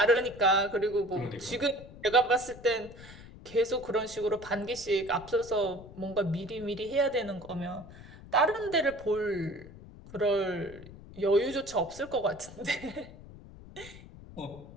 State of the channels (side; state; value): left; noise; rumble, 17 dB below the sound